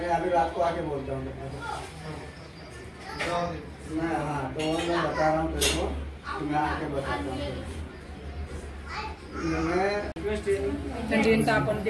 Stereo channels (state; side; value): identical; both; correlation 1.00